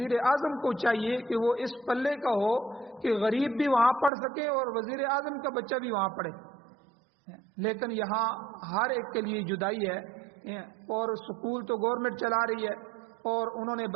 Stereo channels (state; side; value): drops out; left; at 4.1 s